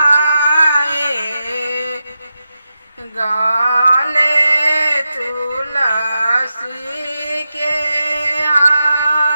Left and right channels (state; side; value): inverted; both; correlation -0.89